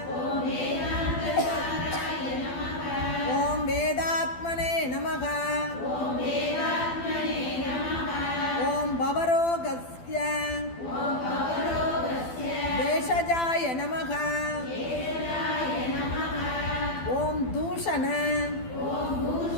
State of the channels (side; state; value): right; late; 12 ms